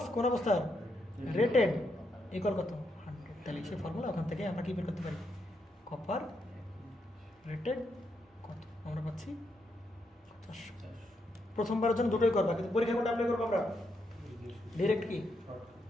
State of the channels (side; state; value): both; normal; correlation 0.80